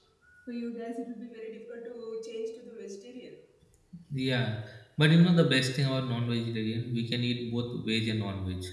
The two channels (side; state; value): both; identical; correlation 1.00